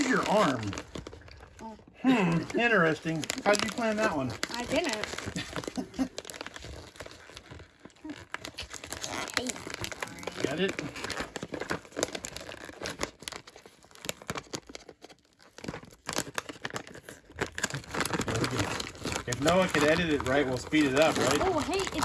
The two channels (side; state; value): both; identical; correlation 1.00